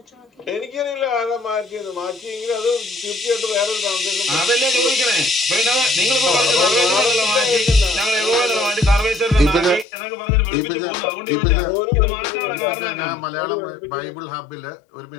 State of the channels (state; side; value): drops out; right; at 9.9 s